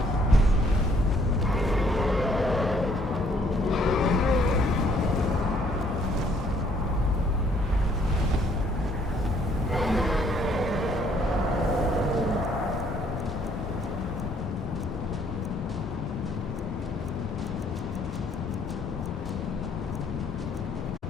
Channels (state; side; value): normal; both; correlation 0.65